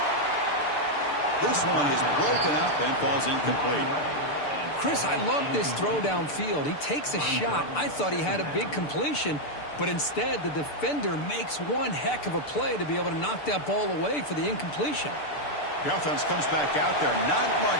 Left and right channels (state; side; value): late; right; 6.8 ms